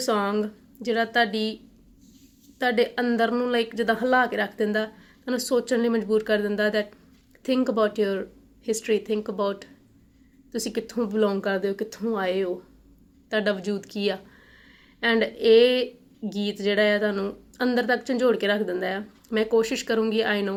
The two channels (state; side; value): identical; both; correlation 1.00